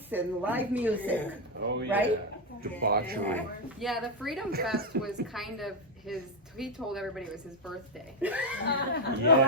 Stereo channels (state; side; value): normal; both; correlation 0.04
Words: and live music. Oh, yeah. Right? Debauchery. Yeah, the Freedom Fest was kind of his. He told everybody it was his birthday. Well,